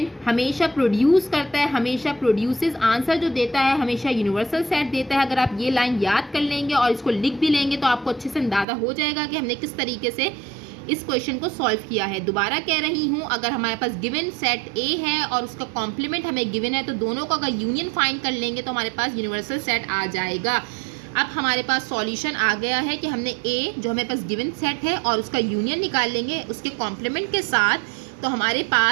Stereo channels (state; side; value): drops out; left; at 8.7 s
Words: हमेशा प्रोड्यूस करता है, हमेशा प्रोड्यूसेस, आंसर जो देता है हमेशा यूनिवर्सल सेट देता है। अगर आप ये लाइन याद कर लेंगे और इसको लिख भी लेंगे तो आपको अच्छे से अंदाजा हो जाएगा कि हमने किस तरीके से इस क्वेश्चन को सॉल्व किया है। दोबारा कह रही हूँ, अगर हमारे पास गिवन सेट ए है और उसका कॉम्प्लीमेंट हमें गिवन है तो दोनों का अगर यूनियन फाइंड कर लेंगे तो हमारे पास यूनिवर्सल सेट आ जाएगा। अब हमारे पास सॉल्यूशन आ गया है कि हमने ए जो हमारे पास गिवन सेट है और उसका यूनियन निकाल लेंगे उसके कॉम्प्लीमेंट के साथ, तो हमारे